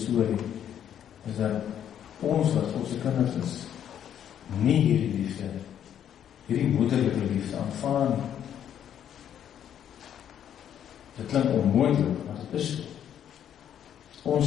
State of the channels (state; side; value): quieter; right; 9.7 dB